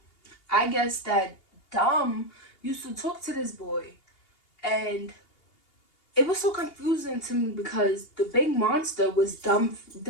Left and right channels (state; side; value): late; right; 2.8 ms